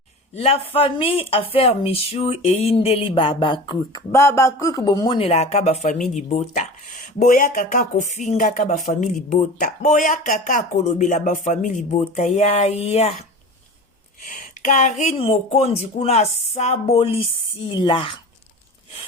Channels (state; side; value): normal; both; correlation 0.34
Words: La famille Affaire Michou et Indeli Baba Cook. Baba Cook bomone la kaba famille bota. Boya kaka kofinga kaba famille bota. Boya kaka kolobela ba famille bota. Ya. Karine Mokondi kuna sabolisila.